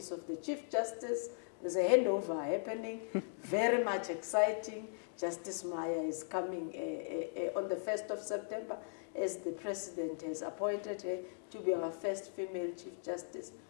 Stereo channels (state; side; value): silent; right; digital silence